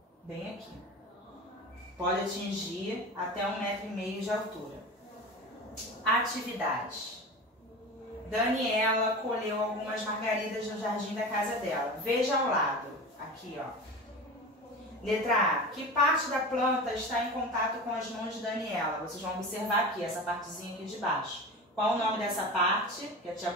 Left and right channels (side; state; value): both; normal; correlation 0.30